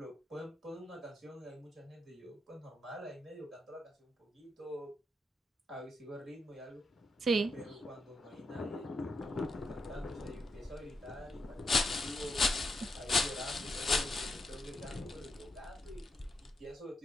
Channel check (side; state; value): both; normal; correlation 0.82